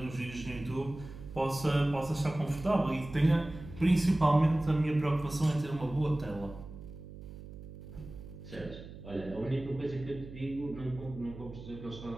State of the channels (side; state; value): right; noise; hum, 14 dB below the sound